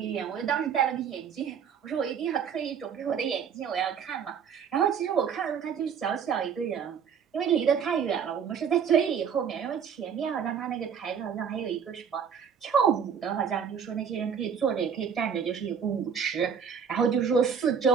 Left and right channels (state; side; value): quieter; left; 7.1 dB